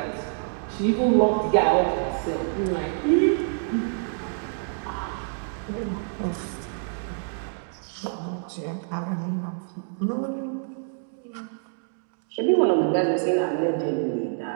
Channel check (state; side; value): silent; left; 61 dB below the other